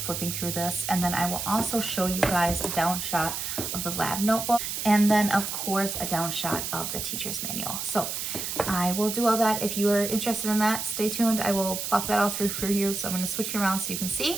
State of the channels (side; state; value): right; noise; hiss, 4 dB below the sound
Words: through this, and then I will also show you guys a down shot of the lab notebook, and then of course a down shot of the teacher's manual. So I will do all that. If you are interested in that, stay tuned. I will plop that all through for you. So I'm going to switch you around so you can